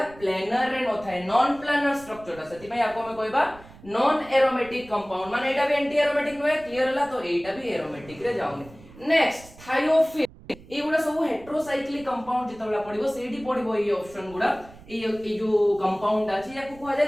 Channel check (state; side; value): noise; right; rumble, 21 dB below the sound